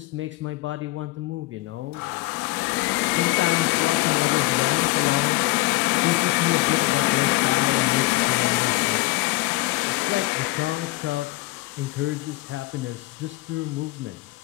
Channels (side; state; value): right; quieter; 21.1 dB